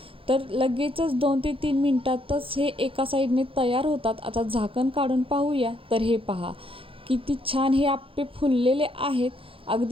तर लगेचच 2 ते 3 मिनटातच हे एका साईडने तयार होतात. आता झाकण काढून पाहूया. तर हे पहा किती छान हे आप्पे फुललेले आहेत,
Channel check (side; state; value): left; late; 0.26 ms